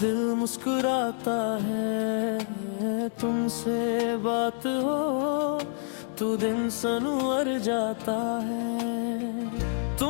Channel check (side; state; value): right; silent; digital silence